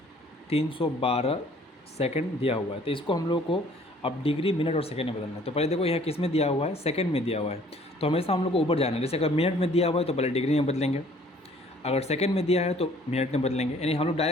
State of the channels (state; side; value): normal; both; correlation 0.56